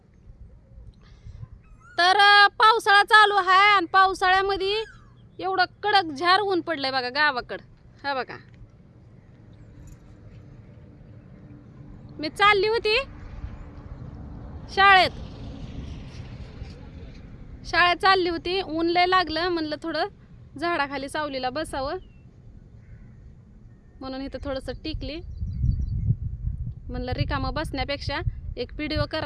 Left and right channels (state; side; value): identical; both; correlation 1.00